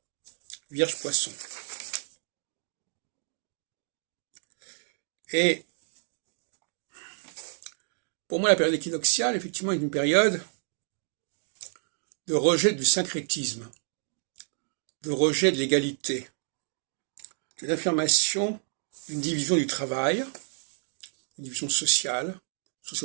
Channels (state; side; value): silent; left; 58 dB below the other